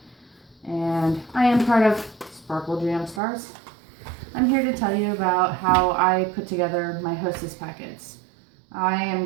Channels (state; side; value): drops out; left; at 3.2 s